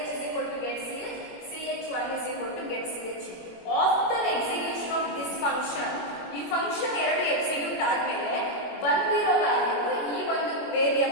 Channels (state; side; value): late; right; 21 ms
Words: is equal to getCH, ch1 is equal to getCHE. After execution of this function, ಈ ಫಂಕ್ಷನ್ ಎರಡು ಎಕ್ಸಿಕ್ಯೂಟ್ ಆದ್ಮೇಲೆ ಬಂದಿರೋ ವ್ಯಾಲ್ಯೂ ಈ ಒಂದು